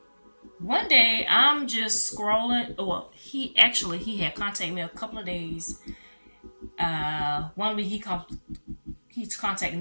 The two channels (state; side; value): inverted; both; correlation -1.00